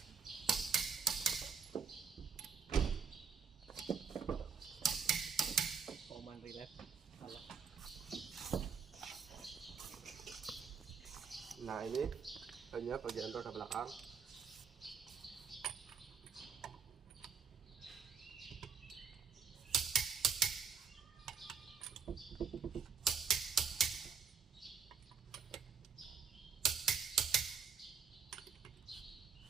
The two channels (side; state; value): left; quieter; 5.9 dB